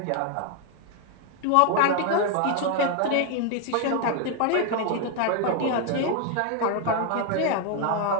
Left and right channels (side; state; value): both; different; correlation 0.00